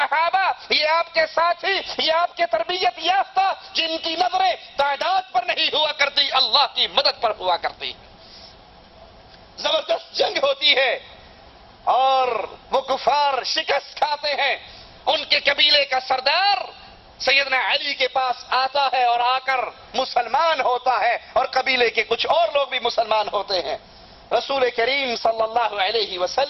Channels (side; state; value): both; identical; correlation 1.00